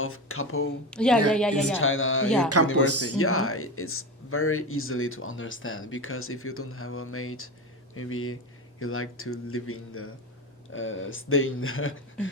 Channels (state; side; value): normal; both; correlation 0.22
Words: couple Yeah. in China Yeah. Campus. university? Yeah, it's very easily to understand because if you don't have a mate, maybe you like to live in the stay in the